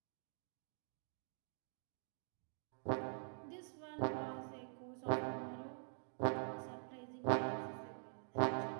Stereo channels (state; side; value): silent; left; digital silence